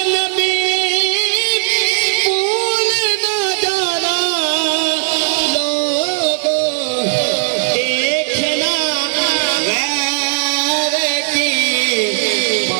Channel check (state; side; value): silent; left; digital silence